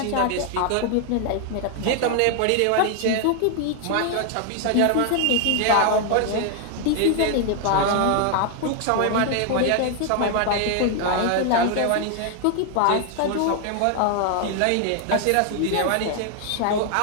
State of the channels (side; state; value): both; different; correlation 0.00